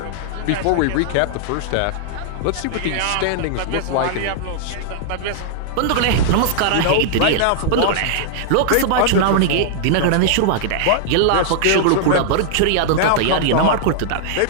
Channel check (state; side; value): different; both; correlation -0.01